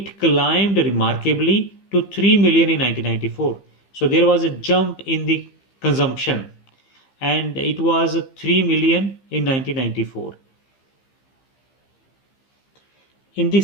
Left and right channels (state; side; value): late; right; 15 ms